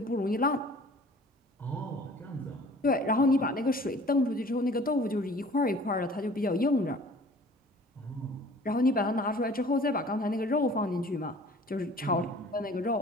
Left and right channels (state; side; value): normal; both; correlation 0.49